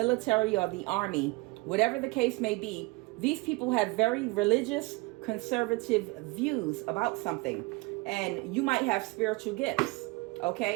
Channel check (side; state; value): left; quieter; 24.3 dB